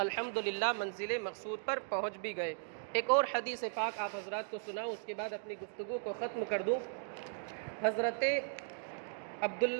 منزل مقصود پر پہنچ بھی گئے۔ ایک اور حدیث پاک آپ حضرات کو سناؤں، اس کے بعد اپنی گفتگو کو ختم کر دوں۔ حضرت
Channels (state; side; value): silent; left; digital silence